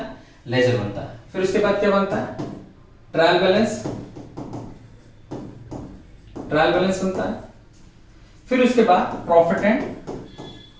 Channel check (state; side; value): identical; both; correlation 1.00